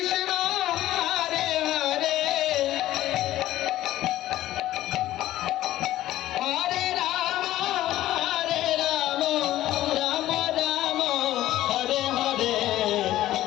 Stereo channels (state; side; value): quieter; right; 14.4 dB